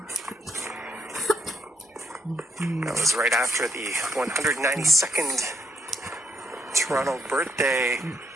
That was right after the 192nd Toronto birthday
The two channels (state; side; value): normal; both; correlation 0.75